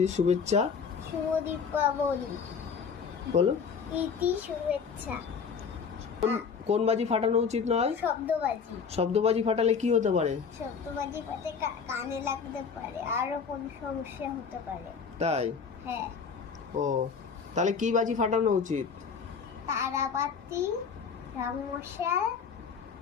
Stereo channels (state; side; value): quieter; right; 6.0 dB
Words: শুভেচ্ছা। শুভ দীপাবলি। বলো। প্রীতি শুভেচ্ছা। কোন বাজি ফাটানো উচিত নয়? শব্দবাজি। শব্দবাজি ফাটালে কি হতে পারে? শব্দবাজি পাতে কানে লাগতে পারে, আরো কোন সমস্যা হতে পারে। তাই হ্যাঁ। ও, তাহলে কি বাজি ফাটানো উচিত? তারাবাতি, রংমশাল